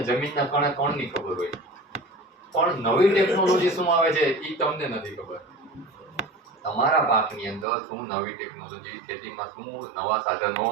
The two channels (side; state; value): left; drops out; at 7.7 s